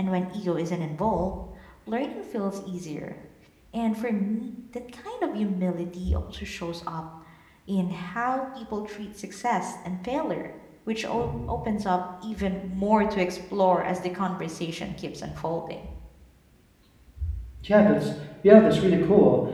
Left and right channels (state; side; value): identical; both; correlation 1.00